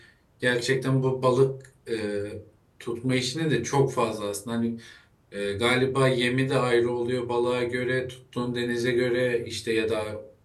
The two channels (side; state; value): both; identical; correlation 1.00